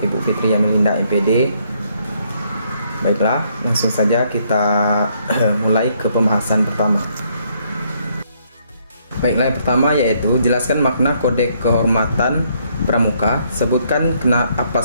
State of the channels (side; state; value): both; inverted; correlation -0.70